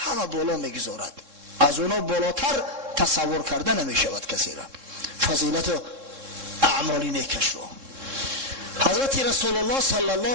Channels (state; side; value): late; left; 3.7 ms